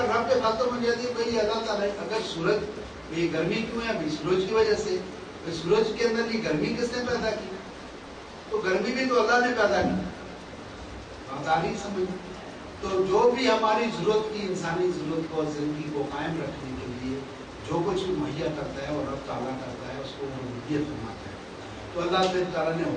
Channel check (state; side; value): identical; both; correlation 1.00